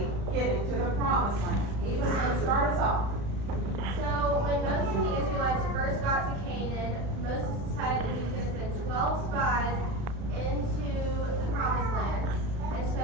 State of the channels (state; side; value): late; left; 35 ms